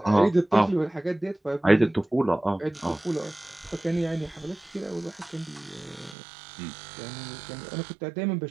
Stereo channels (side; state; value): left; drops out; at 6.2 s